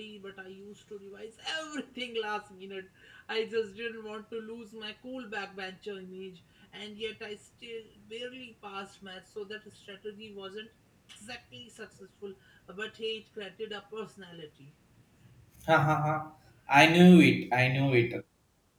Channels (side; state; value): both; identical; correlation 1.00